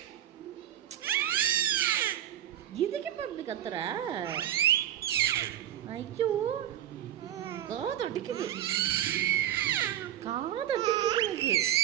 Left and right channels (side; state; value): left; quieter; 11.8 dB